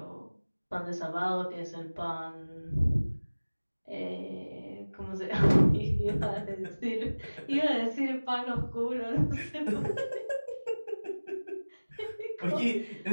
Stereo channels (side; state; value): both; inverted; correlation -1.00